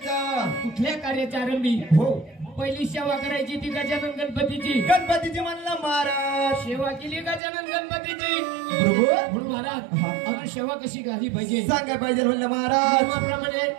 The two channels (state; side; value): drops out; left; at 7.4 s